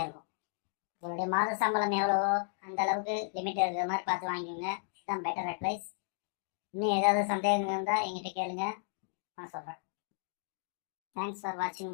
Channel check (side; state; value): right; silent; digital silence